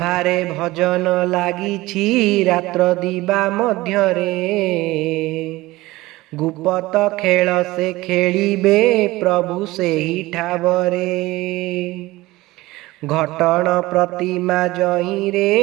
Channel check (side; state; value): left; quieter; 19.2 dB